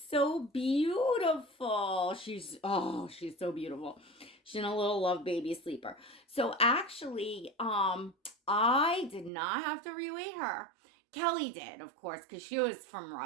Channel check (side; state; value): left; drops out; at 9.3 s